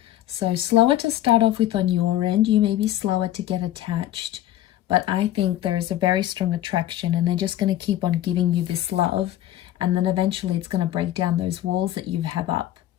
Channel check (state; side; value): quieter; right; 13.2 dB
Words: So slower to start off with on your end. You may be slower to get attached, but I think there is a very strong attraction, and they're just going to keep on giving you this love, and then eventually it's going to break down those walls that you have up.